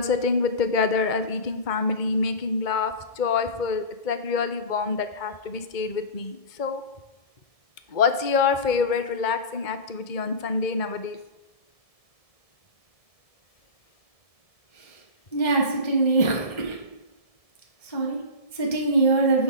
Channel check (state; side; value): late; right; 1.7 ms